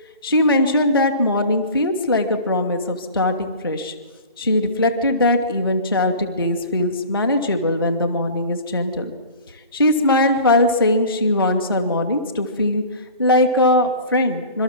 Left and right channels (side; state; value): both; inverted; correlation -0.39